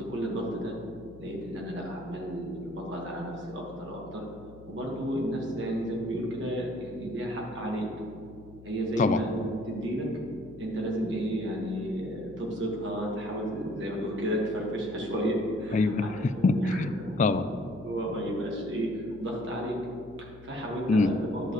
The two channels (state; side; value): noise; left; hum, 19 dB below the sound